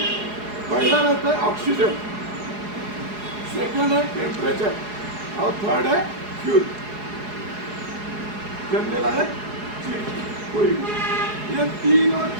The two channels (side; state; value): left; late; 4.8 ms